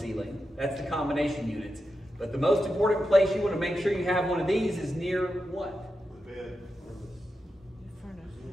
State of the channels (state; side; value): normal; both; correlation 0.89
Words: That's the combination units. But the most important place you want to make sure you have one of these is near what? The bed.